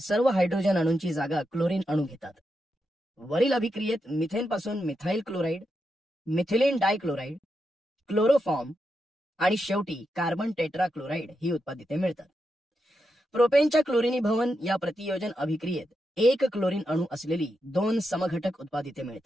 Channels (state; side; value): normal; both; correlation 0.86